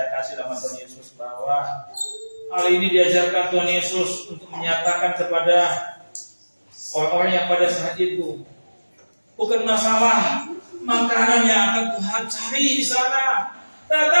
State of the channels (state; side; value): inverted; both; correlation -1.00